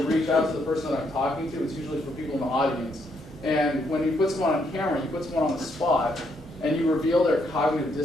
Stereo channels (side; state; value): both; normal; correlation 0.74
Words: reach out to the person that I'm talking to, it's usually for people in the audience. And when you put someone on camera, you put someone on the spot, and you reveal their cognitive